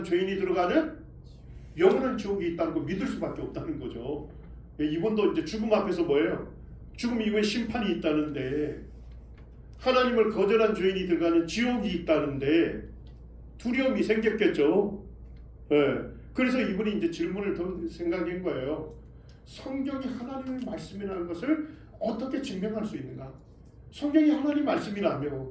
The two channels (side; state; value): both; identical; correlation 1.00